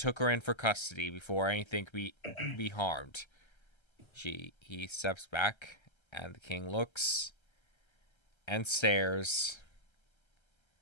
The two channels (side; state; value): right; late; 1.3 ms